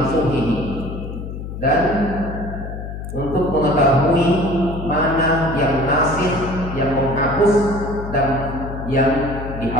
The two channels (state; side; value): noise; left; hum, 8 dB below the sound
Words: dan untuk mengetahui mana yang nasih, yang menghapus, dan yang